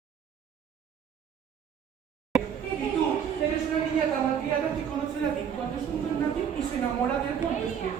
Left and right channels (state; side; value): quieter; left; 8.0 dB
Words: Y tú, eres una niña tan malcriada que conoce a Latín cuando es un don nadie y se enamora de él cuando es